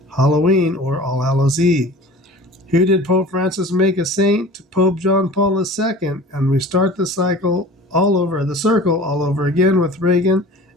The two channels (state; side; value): normal; both; correlation 0.41